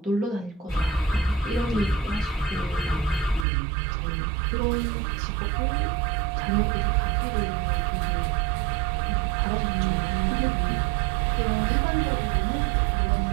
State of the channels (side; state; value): left; drops out; at 3.5 s